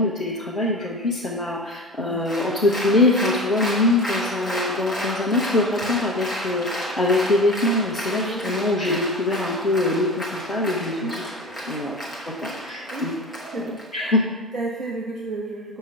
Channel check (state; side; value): normal; both; correlation 0.31